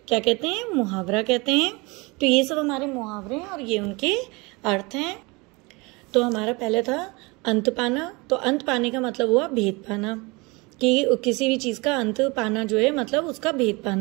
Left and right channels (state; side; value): quieter; left; 26.2 dB